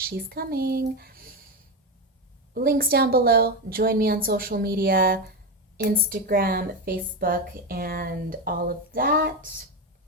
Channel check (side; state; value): both; normal; correlation 0.13